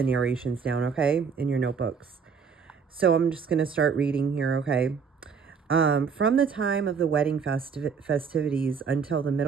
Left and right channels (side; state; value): left; quieter; 6.0 dB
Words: narrations down, okay? In your notebooks. So I'm just going to start reading here, okay? From the time of the wedding festivities until the